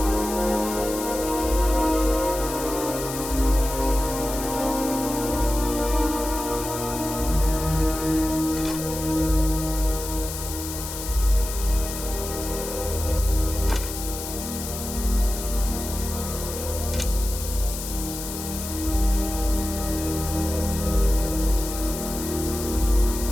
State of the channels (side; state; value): left; noise; hiss, 8 dB below the sound